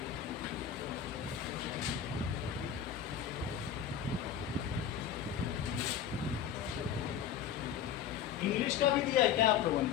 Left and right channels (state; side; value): quieter; right; 9.0 dB